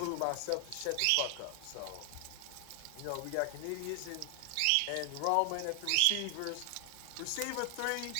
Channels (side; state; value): both; different; correlation 0.00